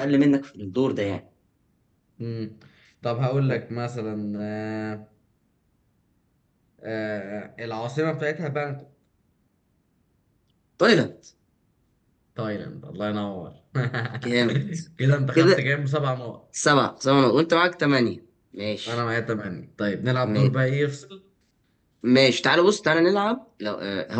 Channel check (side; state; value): both; identical; correlation 1.00